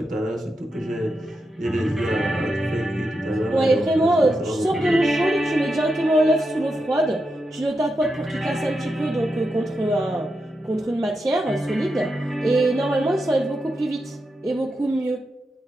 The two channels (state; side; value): normal; both; correlation 0.87